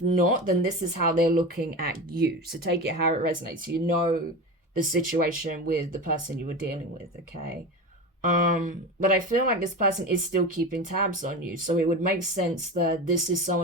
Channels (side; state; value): both; normal; correlation 0.27